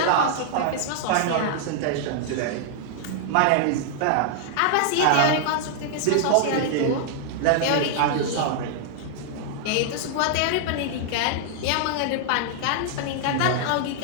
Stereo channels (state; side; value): different; both; correlation -0.01